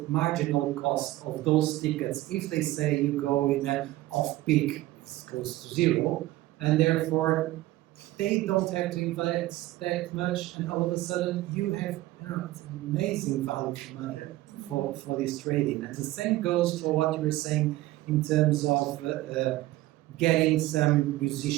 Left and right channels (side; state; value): left; quieter; 17.0 dB